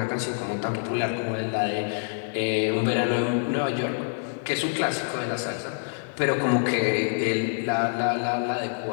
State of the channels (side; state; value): right; silent; digital silence